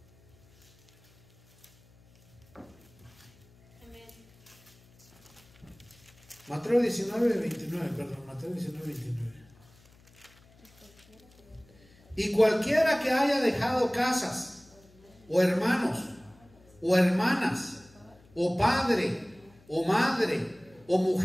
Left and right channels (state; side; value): noise; left; hum, 28 dB below the sound